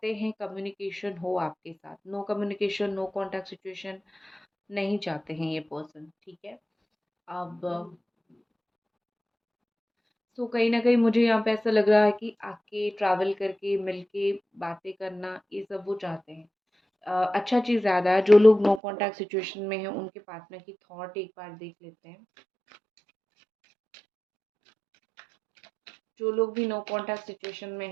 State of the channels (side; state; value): left; drops out; at 18.8 s